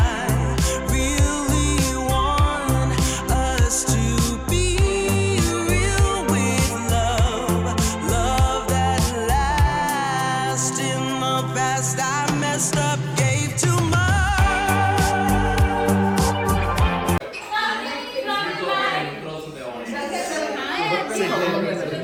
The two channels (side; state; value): both; identical; correlation 1.00